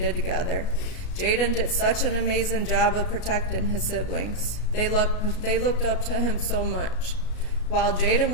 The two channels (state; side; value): late; right; 33 ms